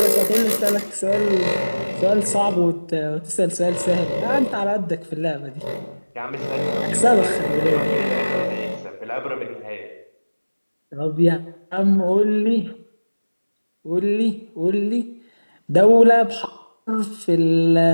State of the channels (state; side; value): inverted; both; correlation -1.00